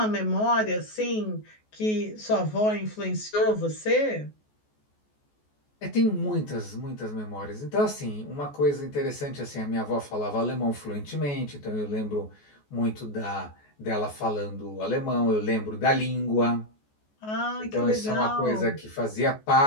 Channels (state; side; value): late; right; 14 ms